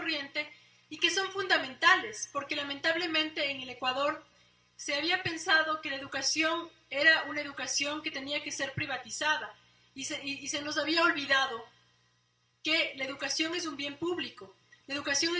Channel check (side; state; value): both; identical; correlation 1.00